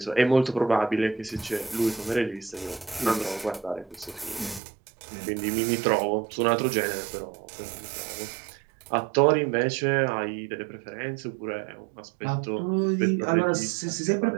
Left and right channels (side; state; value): left; drops out; at 4.6 s